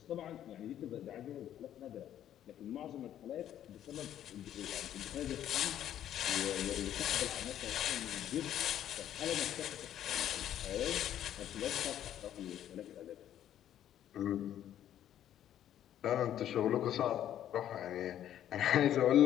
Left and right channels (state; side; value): quieter; right; 11.1 dB